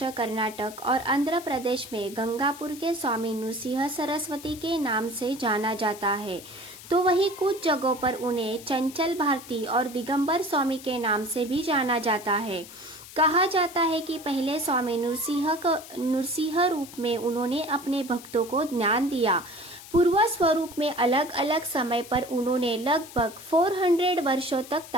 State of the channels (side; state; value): left; noise; hiss, 16 dB below the sound